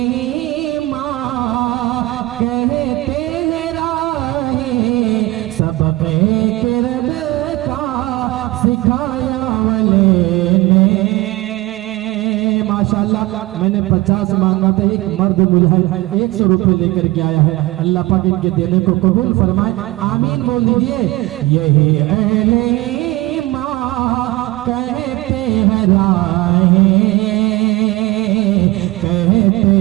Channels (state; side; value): quieter; left; 19.0 dB